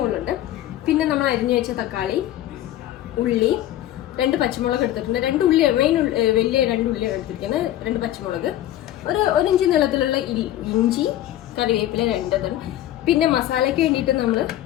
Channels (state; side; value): quieter; right; 13.3 dB